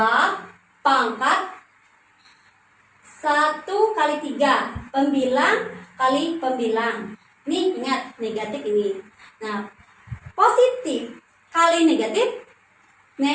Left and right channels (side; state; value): both; identical; correlation 1.00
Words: pangkat 1 kali 3 pembilang kali pembilang. Ini ingat negatif ini. Nah, positif kali negatif